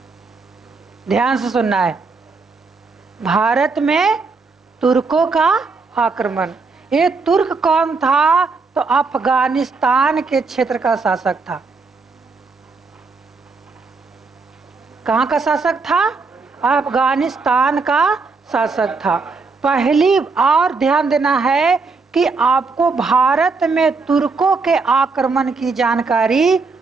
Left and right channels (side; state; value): left; quieter; 4.3 dB